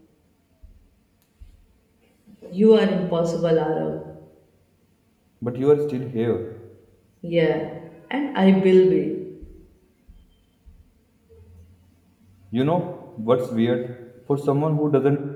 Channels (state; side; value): identical; both; correlation 1.00